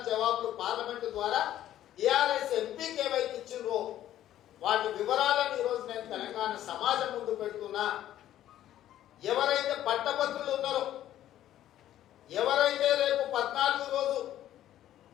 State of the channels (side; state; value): right; quieter; 12.4 dB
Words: జవాబులు పార్లమెంటు ద్వారా టిఆర్ఎస్ ఎంపీకి ఏవైతే ఇచ్చిండ్రో వాటి వివరాలను ఈరోజు నేను తెలంగాణ సమాజం ముందు పెడుతున్నా. ఎవరైతే పట్టభద్రులు ఉన్నారో, ఎవరైతే రేపు 14 రోజు